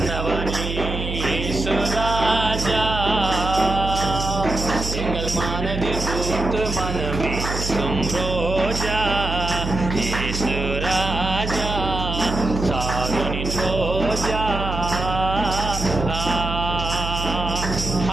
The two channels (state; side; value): noise; right; hum, 5 dB below the sound